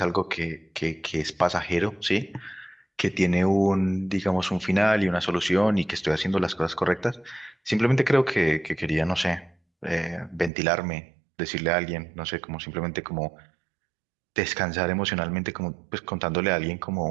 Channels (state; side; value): drops out; left; at 10.5 s